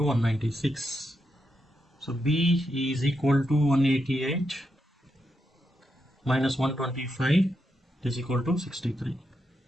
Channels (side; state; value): both; normal; correlation 0.84